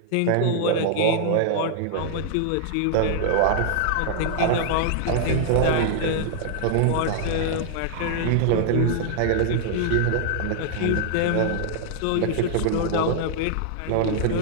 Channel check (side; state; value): both; different; correlation -0.01